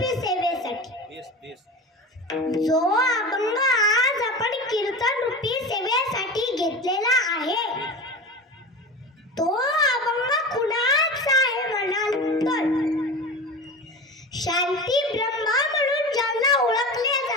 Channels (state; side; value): normal; both; correlation 0.30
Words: सेवेसाठी जो अभंग आज आपण कीर्तन रूपी सेवेसाठी घेतलेला आहे तो अभंग कुणाचा आहे म्हणाल तर शांती ब्रह्म म्हणून ज्यांना ओळखले